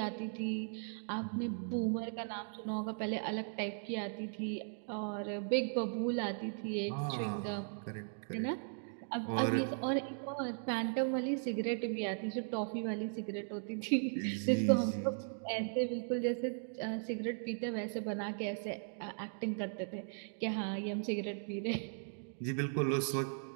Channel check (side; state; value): left; silent; digital silence